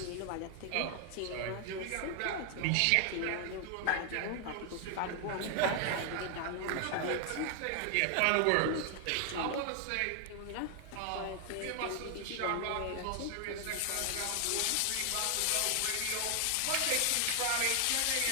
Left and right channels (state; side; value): different; both; correlation 0.00